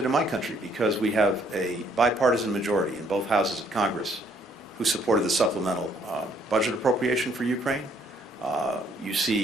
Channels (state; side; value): normal; both; correlation 0.66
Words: in my country because we have a bipartisan majority in both houses of Congress who supported the supplemental budget appropriation for Ukraine. You